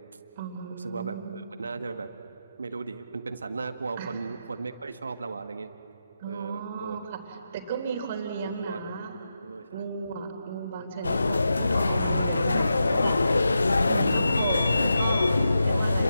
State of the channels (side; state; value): both; inverted; correlation -0.87